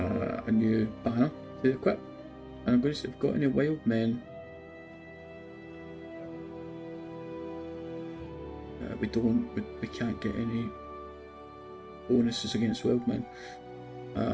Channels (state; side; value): identical; both; correlation 1.00